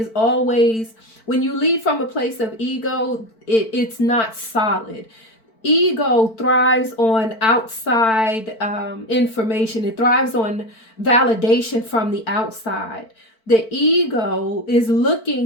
always, when you lead from a place of ego, it's not solid. Ego thrives on outside information. It thrives on validation from the outside. The ego is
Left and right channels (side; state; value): right; late; 4.5 ms